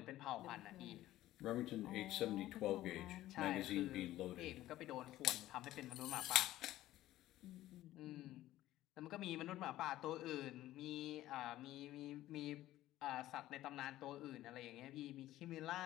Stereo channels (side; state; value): right; quieter; 14.8 dB